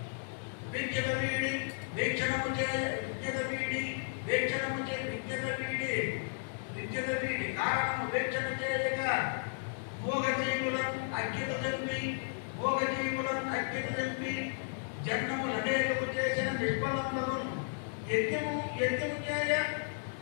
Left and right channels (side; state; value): right; silent; digital silence